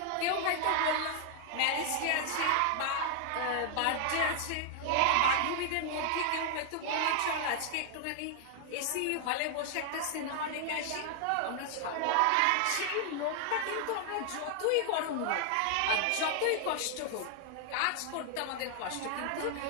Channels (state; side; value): different; both; correlation 0.00